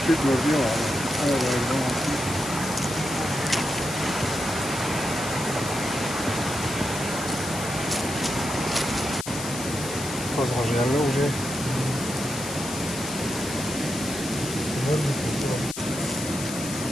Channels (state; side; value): noise; left; hiss, 8 dB below the sound